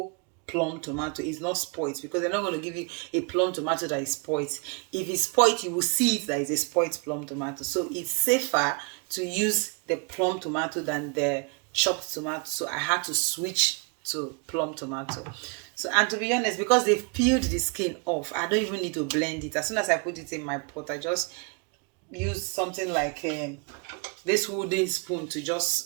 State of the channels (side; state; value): left; quieter; 33.1 dB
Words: plum tomato. It's not spoiled, because they're not going to give you a plum tomato that is spoiled. If it's spoiled, you will see it that is a spoiled plum tomato. So it's safer to use the plum tomato than the chopped tomato. So I had to switch to plum tomato. So, and to be honest, because they've peeled the skin off, I don't even need to blend it. As soon as I put it in my pot, I just use something like this wooden spoon to just